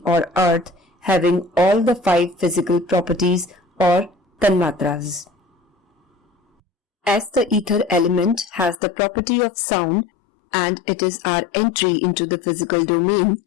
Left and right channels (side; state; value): right; drops out; at 8.8 s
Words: or earth having all the 5 physical properties or tanamatras. As the ether element has the property of sound and it is our entry into the physical domain,